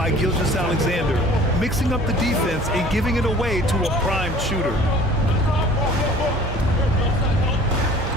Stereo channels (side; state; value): both; normal; correlation 0.48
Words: Gilgeous-Alexander, mixing up the defense and giving it away to a prime shooter.